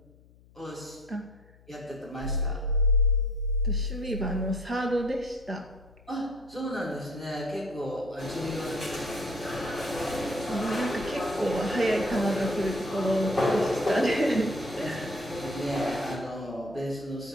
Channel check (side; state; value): left; noise; hum, 26 dB below the sound